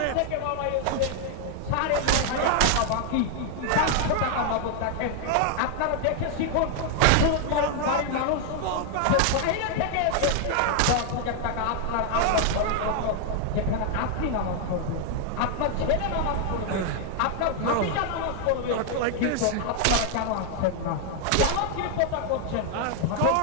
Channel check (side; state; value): both; different; correlation 0.00